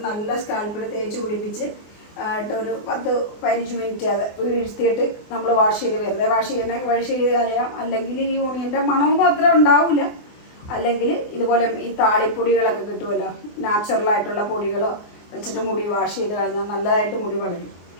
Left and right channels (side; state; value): right; late; 24 ms